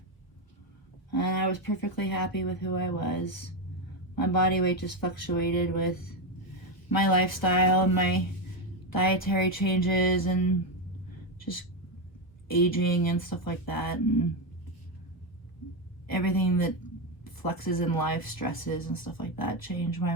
And I was perfectly happy with who I was. My body weight just fluctuated with my lifestyle and my dietary changes and just aging and stuff like that, and everything that flexes in life, stresses and stuff like that, change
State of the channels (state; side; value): late; right; 1.1 ms